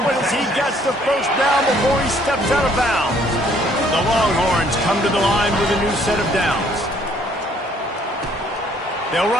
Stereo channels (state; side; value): normal; both; correlation 0.63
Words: one as he gets the first down before he steps out of bounds. The Longhorns come to the line with a new set of downs. They'll